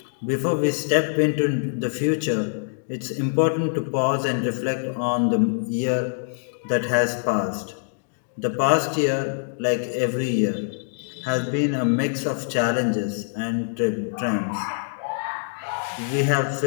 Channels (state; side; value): silent; right; digital silence